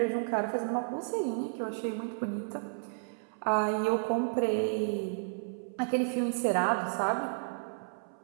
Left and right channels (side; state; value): left; silent; 56 dB below the other